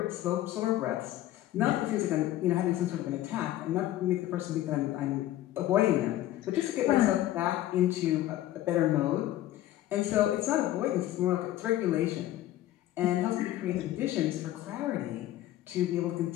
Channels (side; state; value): right; quieter; 14.2 dB